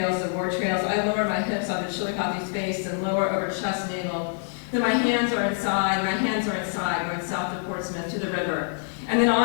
the war trails, I lower my hips onto Chillicothe's face and lower over chest navel. Then my hands are inside, going south to Portsmouth, to the river. And then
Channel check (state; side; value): silent; right; 59 dB below the other